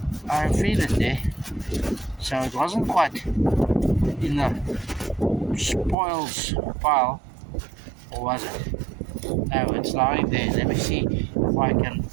I feel it there. So it wasn't quite in the spoils pile, or was it? No, it's lying there. Let me see if I can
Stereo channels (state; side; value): drops out; left; at 6.0 s